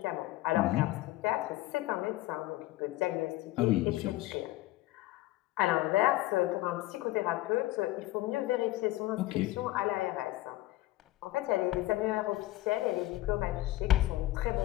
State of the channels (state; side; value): quieter; right; 17.3 dB